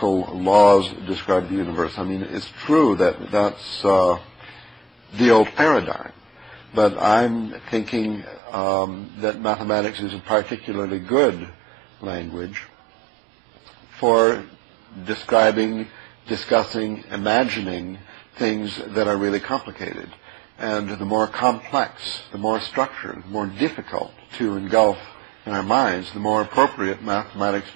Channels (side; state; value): left; drops out; at 8.4 s